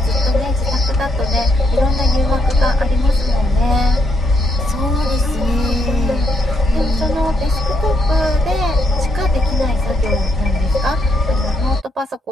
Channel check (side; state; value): both; normal; correlation 0.76